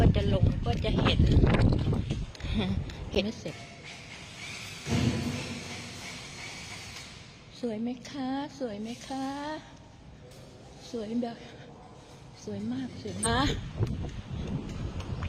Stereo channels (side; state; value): both; identical; correlation 1.00